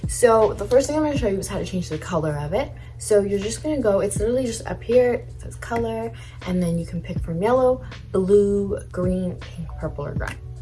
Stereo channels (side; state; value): both; identical; correlation 1.00